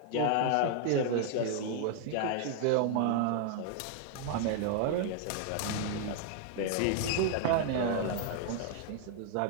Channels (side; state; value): both; different; correlation 0.00